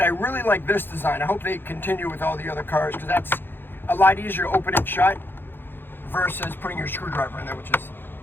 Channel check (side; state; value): right; late; 0.10 ms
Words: I really like this design. I hope they continue with all the other cars because that's a lot easier to open and shut versus putting your screwdriver in there, which is